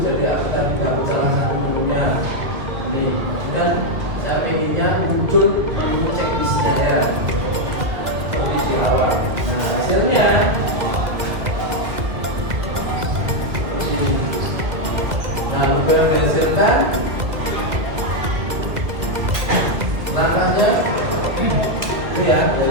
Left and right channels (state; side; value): late; left; 2.1 ms